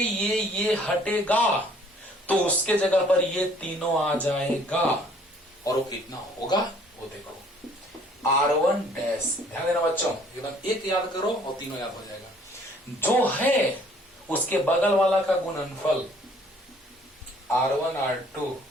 हटेगा तो उसके जगह पर ये तीनों आ जाएगा। और वो कितना होगा वो देखो, R1 डैश। ध्यान देना बच्चों, एकदम एक याद करो और तीनों याद हो जाएगा। जो है उसके बगल वाला का गुणनफल R1 R2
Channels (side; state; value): both; normal; correlation 0.58